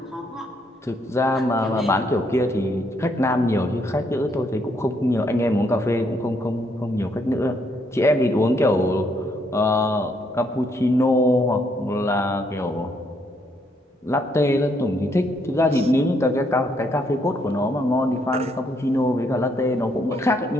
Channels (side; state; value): both; normal; correlation 0.72